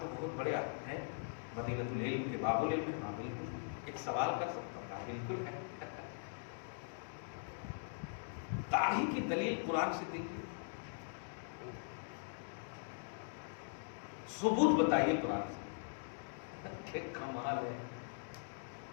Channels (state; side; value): silent; right; digital silence